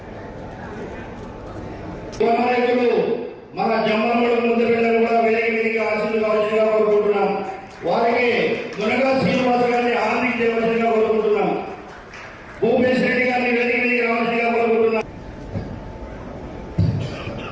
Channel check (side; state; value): both; identical; correlation 1.00